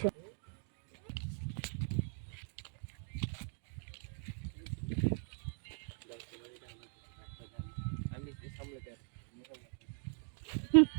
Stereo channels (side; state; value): left; silent; 51 dB below the other